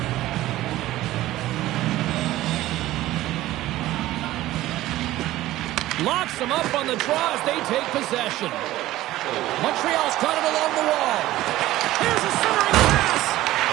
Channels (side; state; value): left; quieter; 15.7 dB